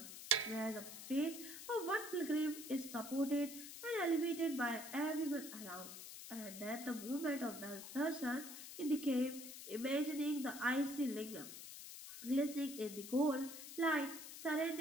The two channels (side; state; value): left; noise; hiss, 11 dB below the sound